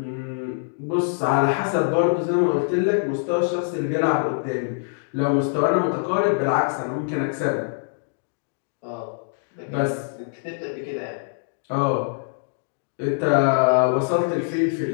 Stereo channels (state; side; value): silent; right; digital silence